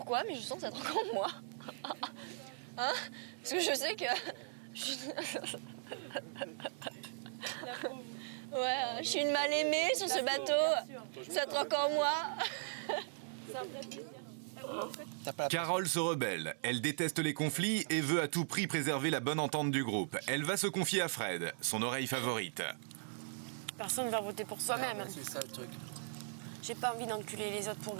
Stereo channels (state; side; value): silent; left; 52 dB below the other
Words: mais je sens que ça va être encore moi. Hein? Parce que je sais que... Ouais, je suis une mal aimée sur ce bateau. Ça va être encore moi. Carole se rebelle. Elle déteste les conflits et veut à tout prix préserver la bonne entente du groupe. Elle va se confier à Fred, son oreille favorite. Personne ne va voter pour soi-même. C'est ça le truc. J'ai pas envie d'enculer les autres pour